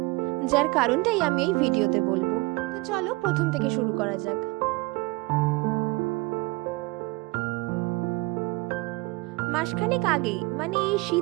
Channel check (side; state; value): left; quieter; 24.1 dB